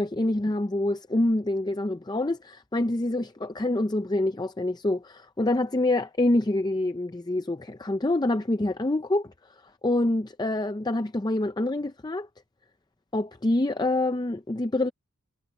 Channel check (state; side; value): normal; both; correlation 0.80